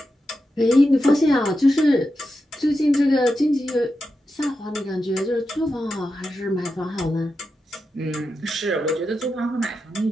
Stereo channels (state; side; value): normal; both; correlation 0.89